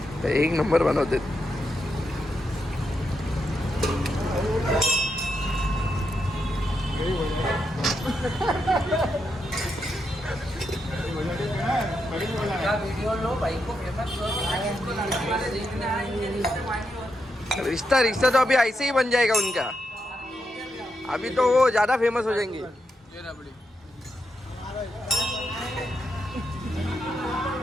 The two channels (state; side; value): normal; both; correlation 0.83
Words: एक नंबर बनवते. रिश्ता रिश्ता तो अभी ऐसे ही बन जाएगा उनका. अभी तो वो ज्यादा फेमस हो जाएंगे.